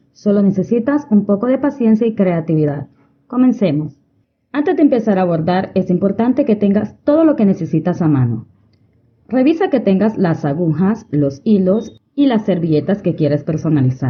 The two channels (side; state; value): both; identical; correlation 1.00